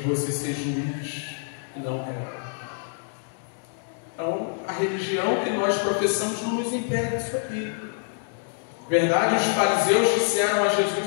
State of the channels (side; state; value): right; silent; 61 dB below the other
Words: ser juiz e não réu. Então, a religião que nós professamos não nos impede disso aqui. Verdade, os fariseus disseram a